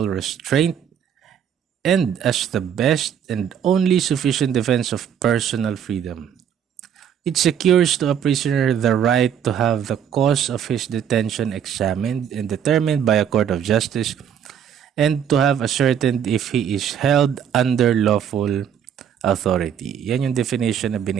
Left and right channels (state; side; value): quieter; left; 8.7 dB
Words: restraint and as the best and only sufficient defense of personal freedom. It secures to a prisoner the right to have the cause of his detention examined and determined by a court of justice and to have ascertained if he is held under lawful authority. Yan yung definition na